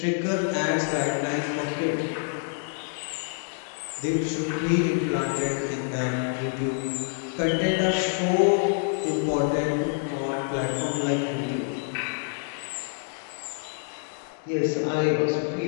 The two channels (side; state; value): right; silent; digital silence